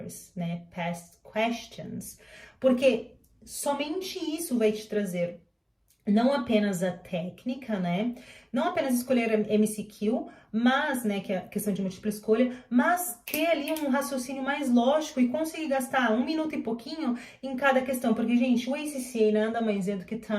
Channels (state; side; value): identical; both; correlation 1.00